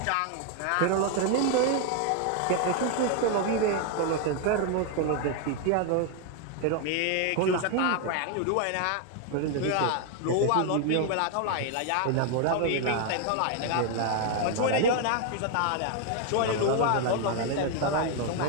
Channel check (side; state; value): both; different; correlation 0.01